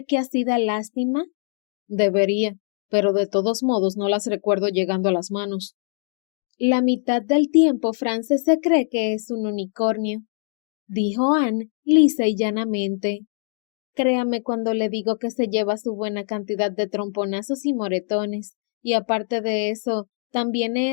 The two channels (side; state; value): right; silent; digital silence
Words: que así da lástima? Debería, pero de todos modos no las recuerdo llegando a las manos. La mitad del tiempo Frances se cree que es un unicornio, dijo Anne lisa y llanamente. Créame cuando le digo que se lleva su buena cantidad de tromponazos y moretones, y aparte de eso, también he